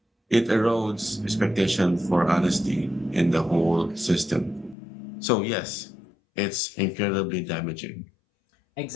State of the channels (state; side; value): drops out; right; at 4.8 s